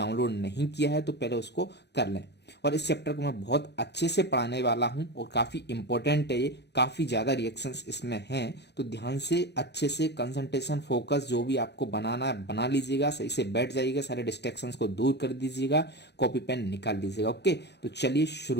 नहीं किया है तो पहले उसको कर लें। और इस चैप्टर को मैं बहुत अच्छे से पढ़ाने वाला हूँ और काफ़ी इंपॉर्टेंट है ये, काफ़ी ज़्यादा रिएक्शंस इसमें हैं। तो ध्यान से अच्छे से कंसंट्रेशन फोकस जो भी आपको बनाना है बना लीजिएगा, सही से बैठ जाइएगा, सारे डिस्ट्रैक्शंस को दूर कर दीजिएगा, कॉपी पेन निकाल लीजिएगा। ओके, तो चलिए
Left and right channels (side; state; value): right; late; 0.49 ms